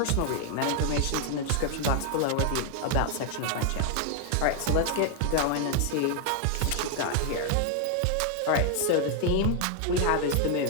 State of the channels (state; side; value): different; both; correlation 0.00